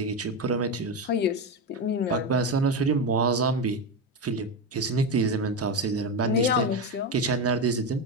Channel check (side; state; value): both; normal; correlation 0.14